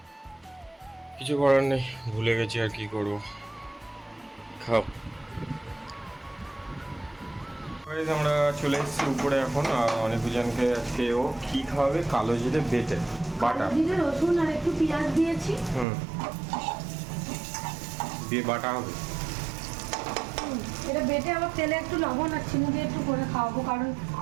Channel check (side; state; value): left; drops out; at 15.9 s